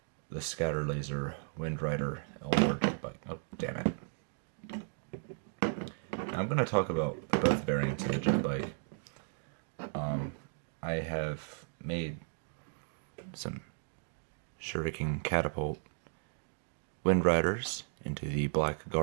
The Scatter Laser Windrider Eldar Jetbike. Oh, damn it. Now I'm going to talk about both variants of the Jetbike. I have made some Shuriken Catapult Windriders into the Black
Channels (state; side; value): silent; left; digital silence